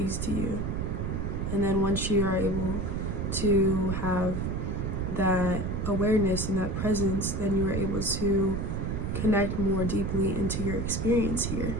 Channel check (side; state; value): right; noise; rumble, 1 dB below the sound